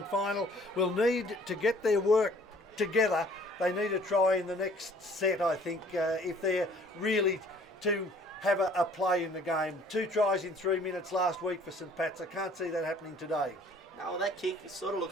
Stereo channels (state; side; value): normal; both; correlation 0.55